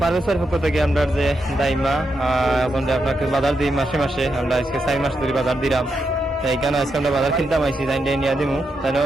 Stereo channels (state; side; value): normal; both; correlation 0.84